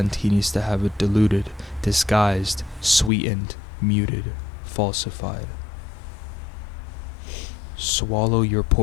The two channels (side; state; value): right; drops out; at 3.1 s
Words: he needs to have it diluted, disguised, sweetened, muted, falsified. Swallow your